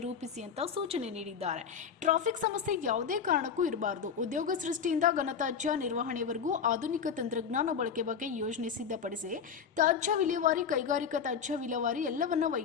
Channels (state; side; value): quieter; right; 6.9 dB